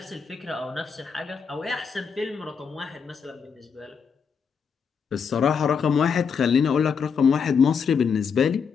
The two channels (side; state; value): right; quieter; 6.3 dB